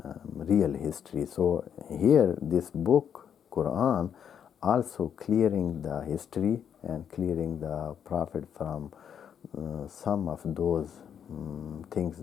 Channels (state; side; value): quieter; right; 8.4 dB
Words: real history. So here this book, Quran, also clearing the history and clearing the prophet from some of those things